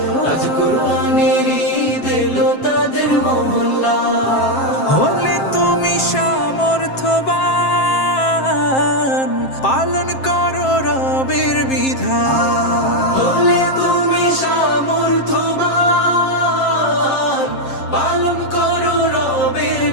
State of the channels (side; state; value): right; late; 7.5 ms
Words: আজ কুরবানির ঈদ এলো তাদের মহল্লায়। হলে তুমি সামর্থ্যবান, পালন করো রবের বিধান। হলে তুমি সামর্থ্যবান, পালন করো রবের